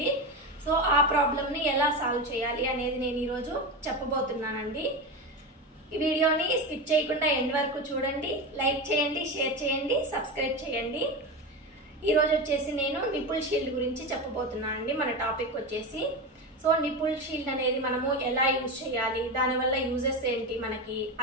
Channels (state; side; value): normal; both; correlation 0.20